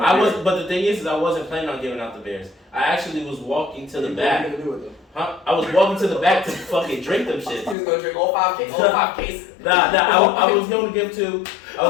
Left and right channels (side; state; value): right; drops out; at 7.8 s